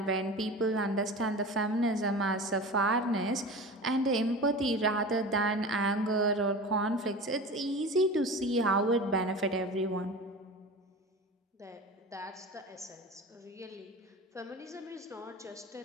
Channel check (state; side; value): normal; both; correlation 0.33